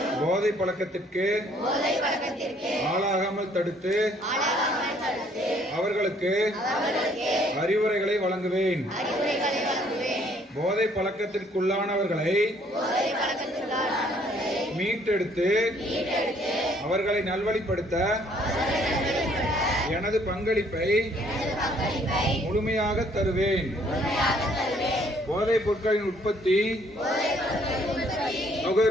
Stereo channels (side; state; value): both; normal; correlation 0.63